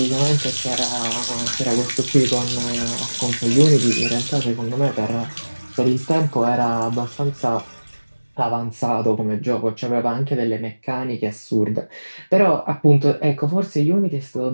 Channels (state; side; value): inverted; both; correlation -1.00